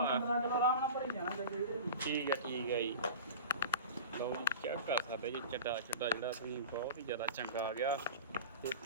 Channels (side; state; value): both; inverted; correlation -0.33